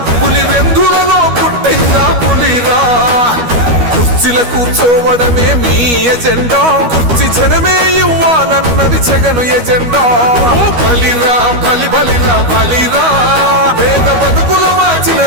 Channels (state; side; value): late; left; 12 ms